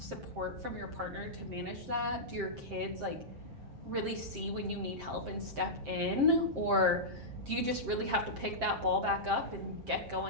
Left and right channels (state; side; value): late; left; 7.6 ms